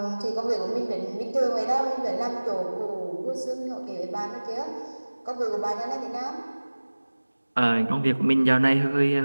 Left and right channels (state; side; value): inverted; both; correlation -1.00